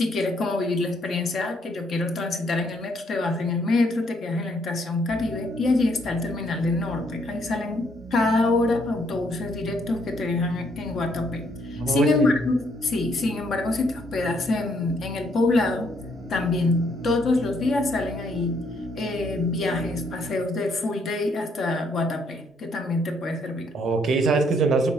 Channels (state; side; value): normal; both; correlation 0.70